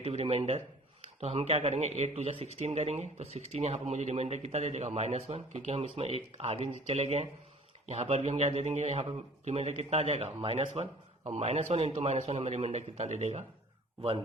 रिमाइंडर। तो हम क्या करेंगे 8 2 जा 16 करेंगे, तो 16 यहाँ पर मुझे रिमाइंडर कितना दे देगा -1, क्योंकि हम इसमें एक आगे चले गए हैं। यहाँ पर भी हम क्या दे देंगे, यहाँ पर रिमाइंडर कितना आ जाएगा -1, और -1 × -1 हमें रिमाइंडर कितना दे देगा 1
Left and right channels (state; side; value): normal; both; correlation 0.50